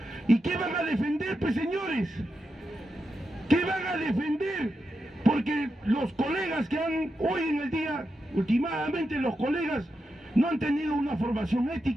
¿Y qué van a defender, pues, señores? ¿Qué van a defender? Porque los colegas que han hoy en el día, últimamente los colegas no han tenido una formación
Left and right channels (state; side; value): normal; both; correlation 0.87